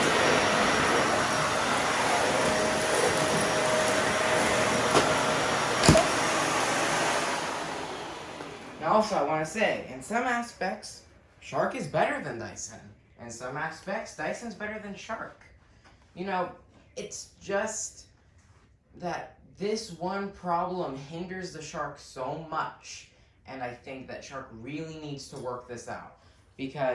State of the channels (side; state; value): both; identical; correlation 1.00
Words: Now also, I want to say, in some aspects, Shark is better than Dyson. In some aspects, Dyson's better than Shark. You know, it's just that this one problem hinders the Shark so much, and I think that Shark really needs to work this out.